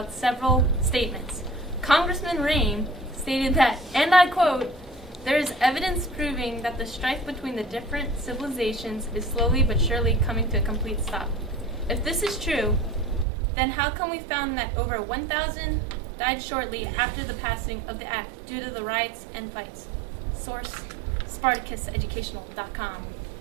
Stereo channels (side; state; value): left; drops out; at 13.2 s